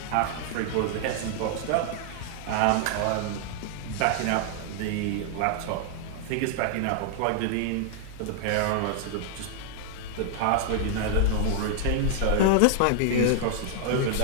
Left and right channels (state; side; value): different; both; correlation 0.00